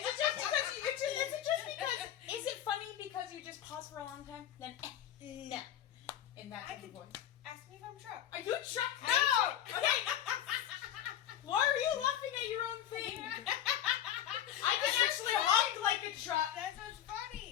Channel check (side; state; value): right; quieter; 10.9 dB